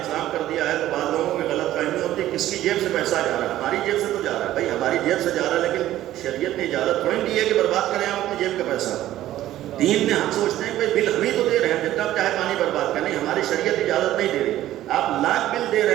کر دیا ہے تو بعض لوگوں کی غلط فہمی ہوتی ہے کس کی جیب سے پیسہ جا رہا ہے. ہماری جیب سے تو جا رہا ہے بھائی، ہماری جیب سے جا رہا ہے، لیکن شریعت نے اجازت تھوڑی دی ہے کہ برباد کریں ہم اپنی جیب کا پیسہ. دین میں ہم سوچتے ہیں کہ بل ہم ہی تو دے رہے ہیں، جتنا چاہے پانی برباد کریں، ہماری شریعت اجازت نہیں دے رہی. آپ لاکھ بل دے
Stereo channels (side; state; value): left; quieter; 13.8 dB